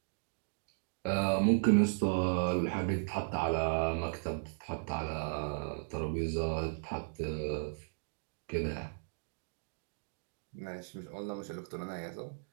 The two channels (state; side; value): silent; left; digital silence